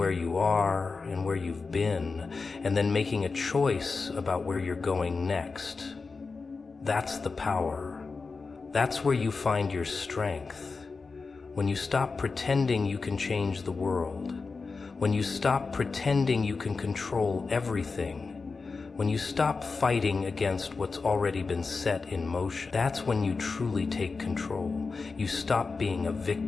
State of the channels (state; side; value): quieter; right; 4.4 dB